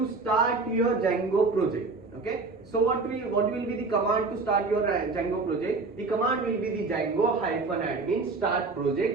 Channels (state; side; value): quieter; left; 4.0 dB